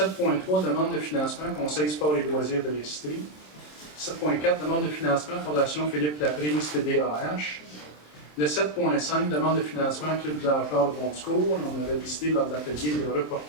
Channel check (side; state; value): right; late; 27 ms